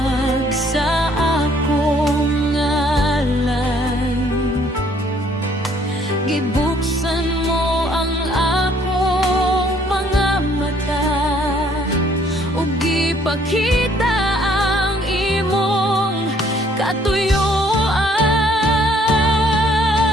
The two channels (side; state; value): both; normal; correlation 0.63